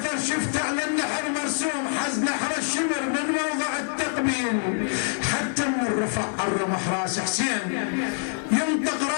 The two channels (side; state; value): right; silent; 61 dB below the other